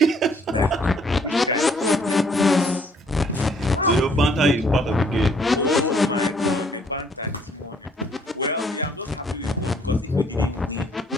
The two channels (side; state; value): both; normal; correlation 0.63